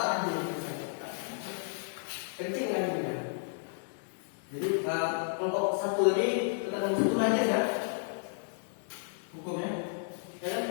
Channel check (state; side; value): silent; right; 56 dB below the other